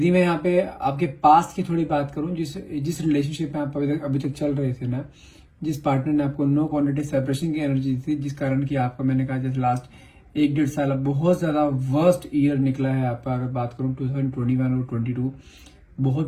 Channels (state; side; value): identical; both; correlation 1.00